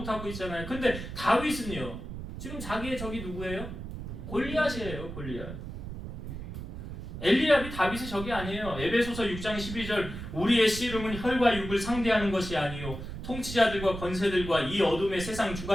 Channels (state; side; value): noise; right; rumble, 8 dB below the sound